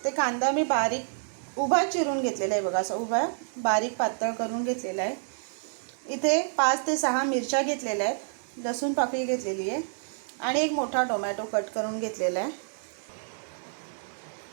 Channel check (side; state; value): left; silent; digital silence